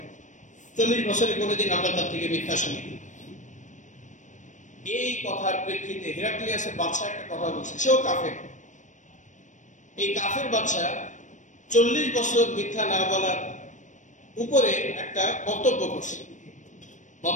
40 বছরে কোনোদিন আমরা তার থেকে মিথ্যা শুনি। এই কথার প্রেক্ষিতে হিরাক্লিয়াসের বাদশা একটা কথা বলছে, সেও কাফের। এই কাফের বাদশা 40 বছর মিথ্যা না বলার উপরে একটা বক্তব্য করছে।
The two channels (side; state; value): right; late; 0.36 ms